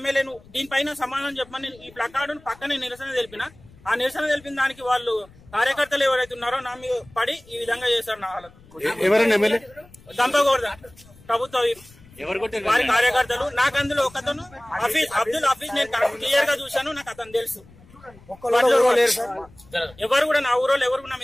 దీనిపైన సమాధానం చెప్పమని ఈ ప్లకార్డును పక్కనే నిరసన తెలిపిన. ఆ నిరసన తెలిపిన దానికి వాళ్ళు కార్యకర్తలు ఎవరైతే ఉన్నారో నా మీద పడి ఈ విధంగా చేశారు. నా వాళ్ళకు గంప గోవర్ధన్ ప్రభుత్వ వారి కార్యకర్తలు. నాకు అందులో ఒకతను అబ్దుల్ హఫీజ్ నేను క్లియర్ గా చూశాను, నాకు అతను తెలుసు. ఎవరు కూడా నా ఊరోళ్ళు ఎవరు కూడా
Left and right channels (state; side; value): noise; left; rumble, 25 dB below the sound